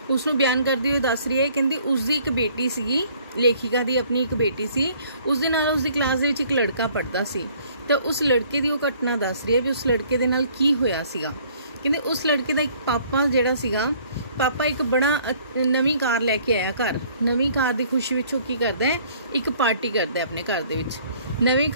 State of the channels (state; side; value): inverted; both; correlation -0.59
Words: उसनूं बयान करते हुए दस रही है, कहती उसकी एक बेटी सीगी, लेखिका दी अपनी एक बेटी सी, उसदे नाल उसदी क्लास दे विच एक लड़का पढ़दा सी। तो उस लड़के दी वो घटना दस रही है भी उस लड़के दे नाल की होया सीगा। कहंदे उस लड़के दा एक पापा जिहड़ा सीगा, पापा एक बड़ा नवीं कार लैके आया घर। नवीं कार की खुशी विच की करदा है, एक पार्टी करदा है अपने घर दे विच। नवीं